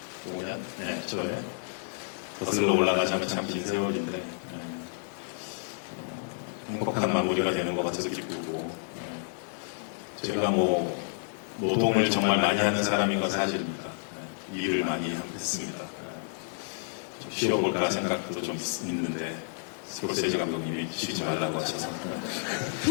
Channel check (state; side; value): silent; right; digital silence